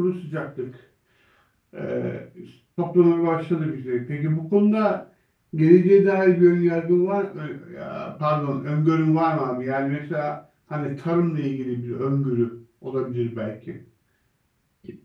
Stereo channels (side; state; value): both; identical; correlation 1.00